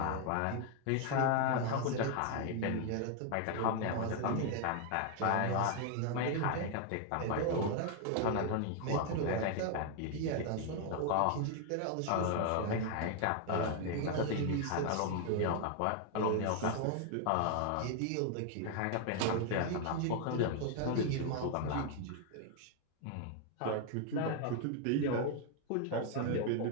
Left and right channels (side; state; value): both; different; correlation 0.00